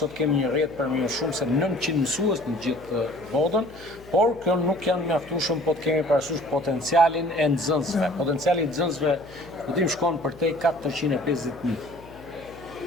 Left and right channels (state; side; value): noise; left; hum, 21 dB below the sound